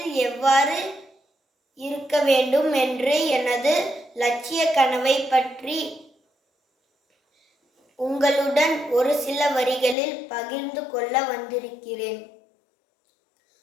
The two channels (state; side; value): drops out; right; at 10.0 s